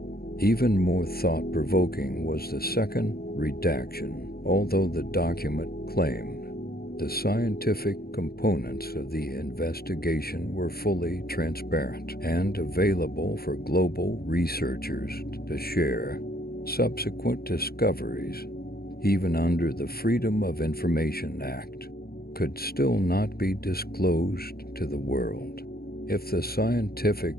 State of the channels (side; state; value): right; late; 0.44 ms